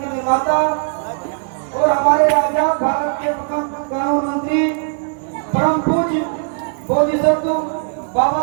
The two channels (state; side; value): silent; left; digital silence